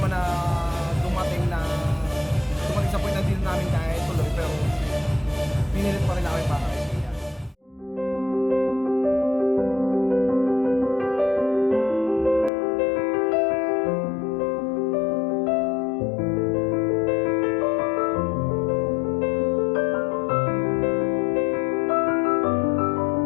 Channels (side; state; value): right; drops out; at 12.5 s